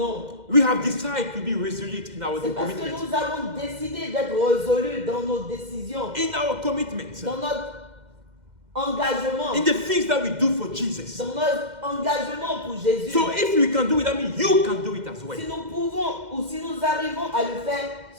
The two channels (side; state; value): left; late; 2.1 ms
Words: We have decided to be resolute in our C'est parce que commitment. nous avons décidé d'être résolus dans nos décisions, In our commitment. dans notre engagement, In the things that we do for Jesus. dans notre engagement pour Jésus. So if we can do it, that means you can do it as well. Si nous pouvons ou si nous arrivons à le faire,